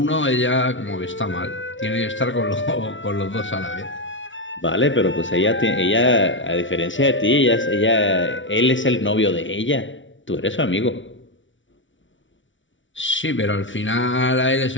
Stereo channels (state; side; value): late; right; 0.56 ms